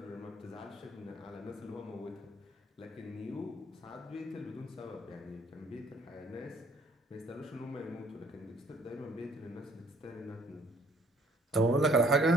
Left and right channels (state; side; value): normal; both; correlation 0.61